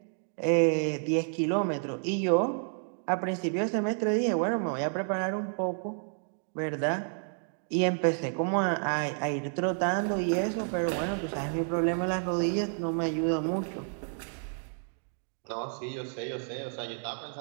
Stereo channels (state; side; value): silent; left; 58 dB below the other